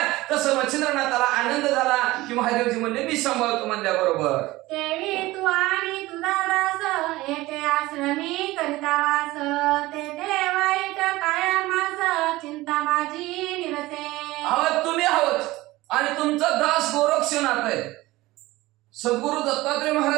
तसं मच्छिंद्रनाथाला आनंद झाला की महादेवजी म्हणले मी सांभाळतो म्हणल्याबरोबर. देवी तू आणि तुझा दास येथे आश्रमी करिता वास ते वाईट कायमास चिंता माझी निरसे. आहोत तुम्ही आहोत आणि तुमचा दास गोरक्षनाथ आहे. सद्गुरु दत्तात्रय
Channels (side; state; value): left; quieter; 18.9 dB